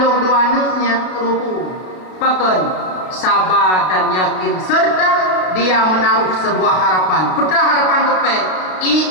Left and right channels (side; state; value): right; late; 33 ms